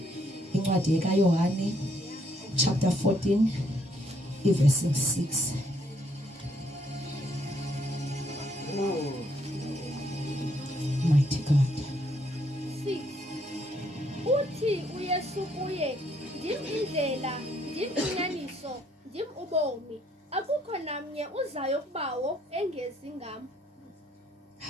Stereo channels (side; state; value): both; normal; correlation 0.69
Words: incwadi kaYohane chapter 14 verse 6 mighty God. 6 Uthi uYesu kuye ndim indlela ndim inyaniso ndim ubomi akukho namnye uzayo kubawo engezi ngam.